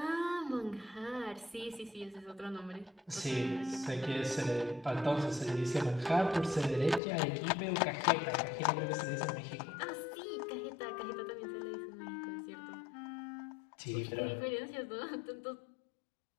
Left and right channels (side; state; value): right; drops out; at 7.0 s